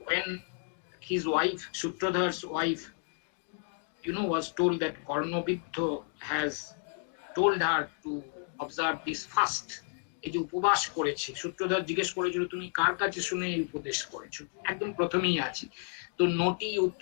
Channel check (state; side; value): silent; right; 57 dB below the other